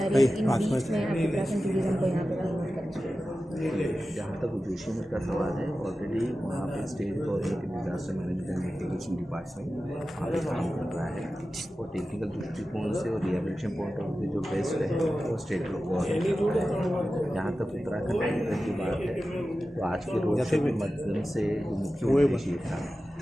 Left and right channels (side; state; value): both; normal; correlation 0.94